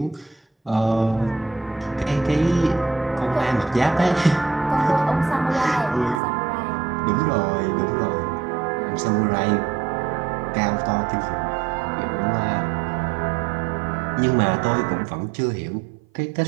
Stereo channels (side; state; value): left; drops out; at 6.2 s